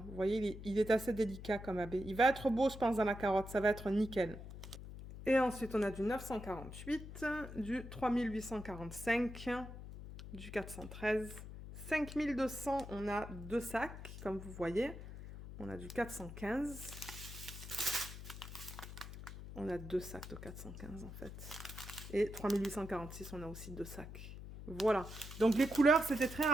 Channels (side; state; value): left; noise; hum, 11 dB below the sound